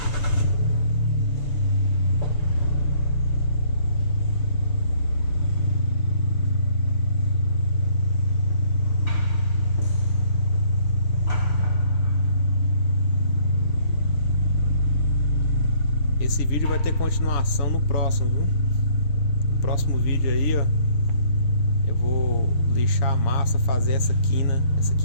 Esse vídeo vai ter continuação no próximo, viu? No próximo vídeo aí, ó, eu vou lixar a massa, fazer essa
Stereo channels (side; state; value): right; late; 7.0 ms